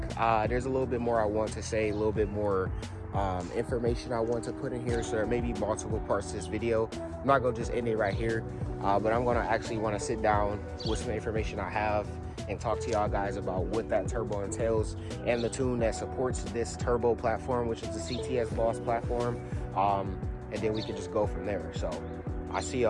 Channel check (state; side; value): identical; both; correlation 1.00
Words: There's a little bit more I want to say, a little bit more information I want to put in here, so there may be multiple parts to this video. I'm not gonna just end it right here, but I'm gonna actually want to sit down with some information I have and talk to y'all guys about what that turbo entails and the tune that supports this turbo platform, which is the CTS Boss platform, and then we can just go from there. So I see